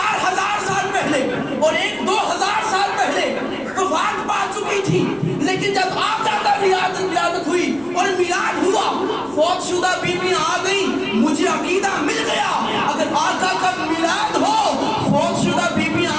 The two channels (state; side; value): noise; left; rumble, 28 dB below the sound